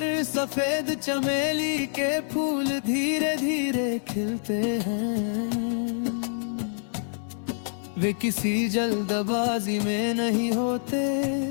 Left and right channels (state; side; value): silent; right; digital silence